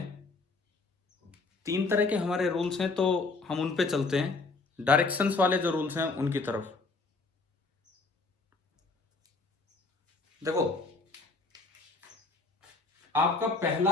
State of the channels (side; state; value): right; quieter; 3.7 dB